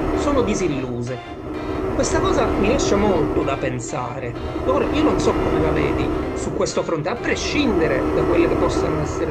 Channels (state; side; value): identical; both; correlation 1.00